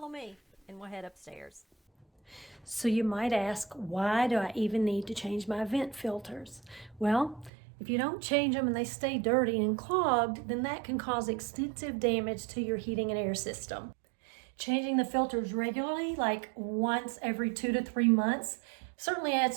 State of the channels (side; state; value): left; drops out; at 7.5 s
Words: me and we'll head upstairs. So you might ask, why do I even need to change my vent filters? Well, if you don't change them and they stay dirty and clogged, then that can cause extensive damage to your heating and air system. Changing the filters regularly, like once every 2 to 3 months, certainly adds